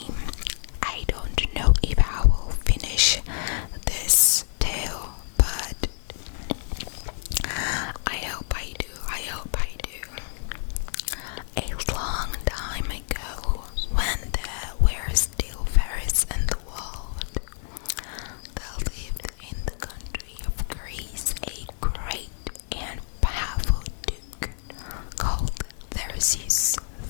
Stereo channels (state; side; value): silent; right; digital silence